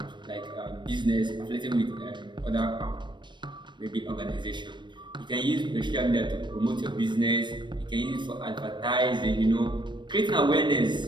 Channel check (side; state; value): left; late; 0.22 ms